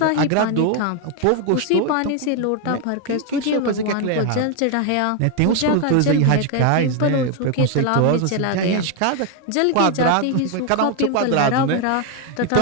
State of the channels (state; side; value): different; both; correlation 0.01